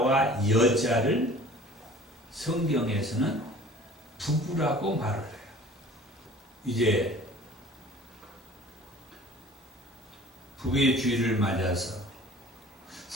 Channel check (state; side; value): normal; both; correlation 0.46